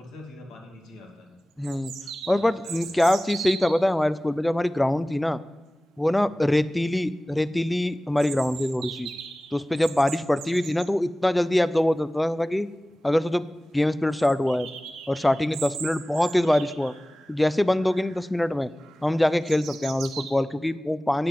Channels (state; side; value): normal; both; correlation 0.97